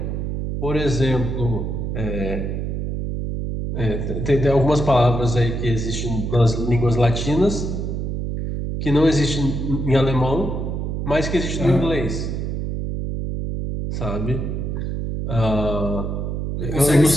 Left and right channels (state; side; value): noise; right; hum, 3 dB below the sound